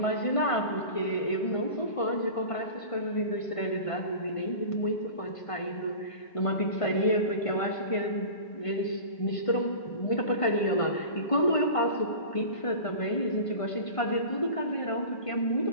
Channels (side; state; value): right; late; 1.5 ms